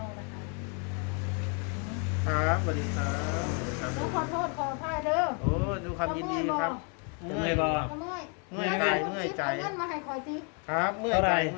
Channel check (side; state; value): right; quieter; 38.1 dB